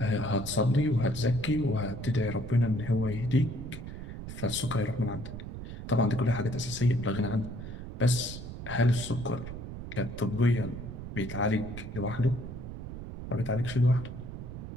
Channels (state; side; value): noise; right; rumble, 9 dB below the sound